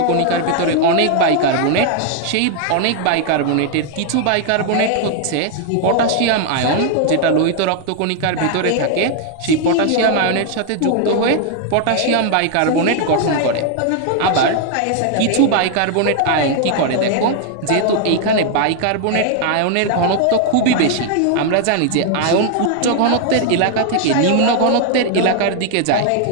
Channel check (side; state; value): both; different; correlation 0.00